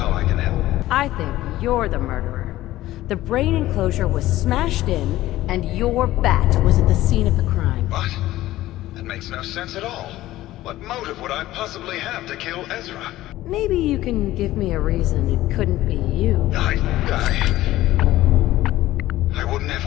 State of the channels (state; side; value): quieter; right; 15.7 dB